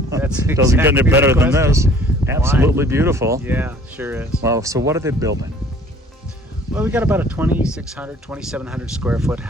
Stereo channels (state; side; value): normal; both; correlation 0.53